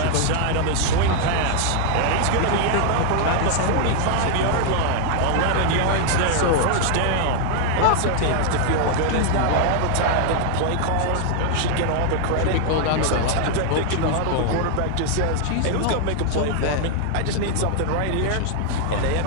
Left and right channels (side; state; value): both; different; correlation 0.00